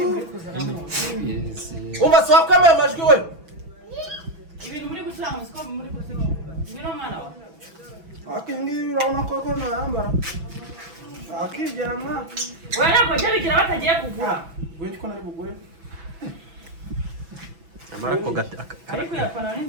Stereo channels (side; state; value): left; late; 6.0 ms